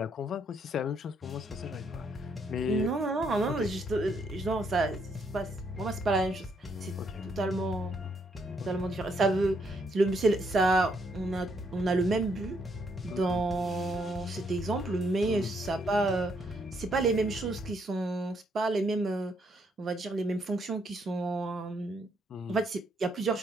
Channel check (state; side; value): normal; both; correlation 0.73